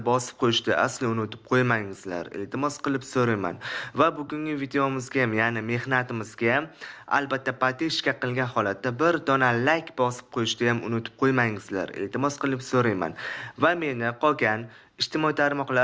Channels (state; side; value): identical; both; correlation 1.00